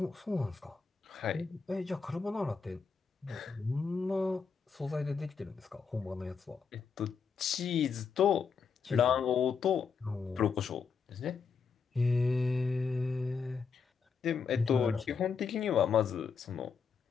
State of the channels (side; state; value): right; quieter; 5.7 dB